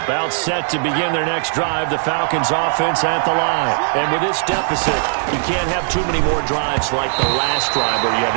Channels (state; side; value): silent; left; digital silence